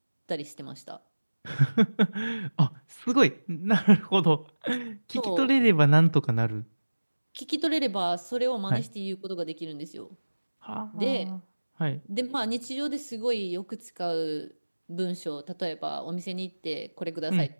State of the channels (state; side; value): inverted; both; correlation -1.00